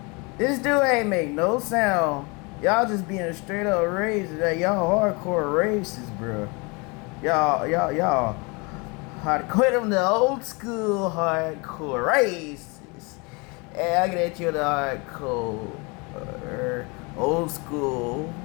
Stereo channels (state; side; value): quieter; right; 29.2 dB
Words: This dude ain't make no sound. Y'all just being a straight up racist. Like, y'all hardcore racist, bro. Y'all hard quit them the old school hardcore racists. And I get you the hardcore old school